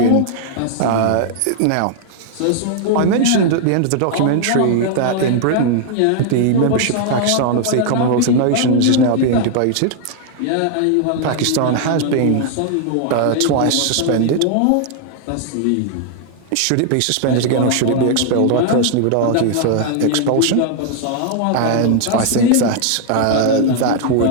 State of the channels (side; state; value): both; different; correlation 0.00